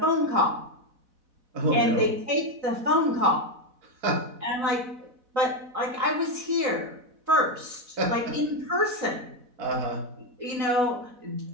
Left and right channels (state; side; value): late; left; 4.1 ms